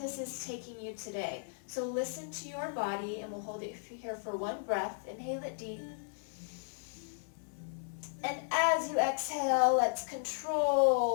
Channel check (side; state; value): right; silent; 54 dB below the other